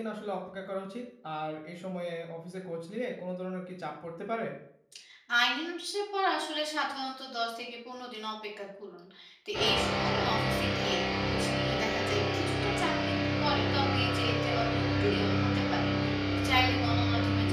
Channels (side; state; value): both; identical; correlation 1.00